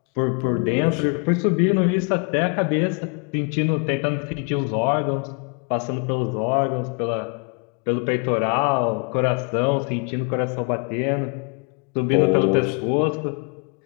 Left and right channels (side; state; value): right; quieter; 36.2 dB